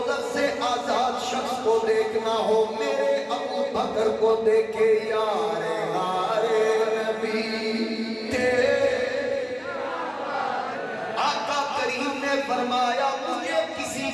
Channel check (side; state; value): both; identical; correlation 1.00